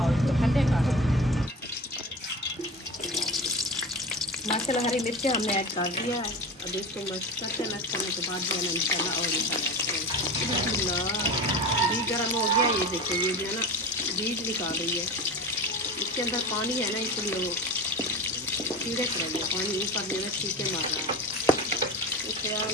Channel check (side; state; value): both; normal; correlation 0.30